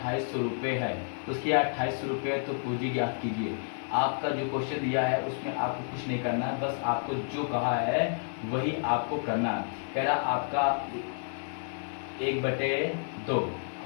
रुपये है, उसकी आय 2800 रुपये, तो पूंजी ज्ञात कीजिए। आपका जो क्वेश्चन दिया है उसमें आपको कुछ नहीं करना है, बस आपको जो कहा है वही आपको करना है। कह रहा आपका 1/2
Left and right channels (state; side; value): silent; right; 58 dB below the other